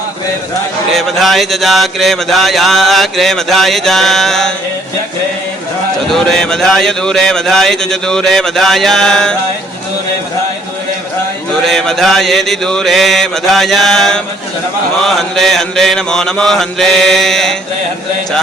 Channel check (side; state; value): both; normal; correlation 0.62